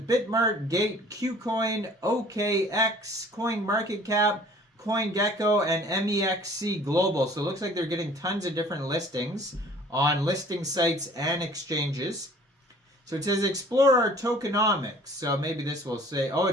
Bitmart, Gate, KuCoin, OKX, CoinMarketCap, CoinGecko, and MEXC Global. So it looks like they're getting tons of different listings on listing sites and exchanges. So it says explore our tokenomics. So maybe this will say, oh,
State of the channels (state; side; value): normal; both; correlation 0.51